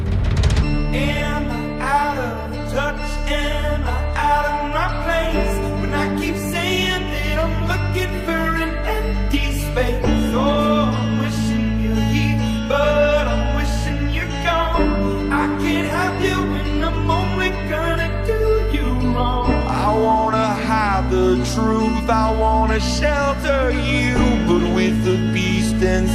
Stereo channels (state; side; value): identical; both; correlation 1.00